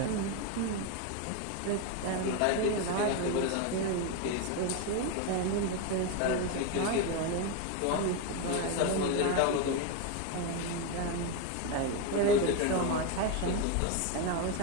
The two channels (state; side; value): different; both; correlation 0.02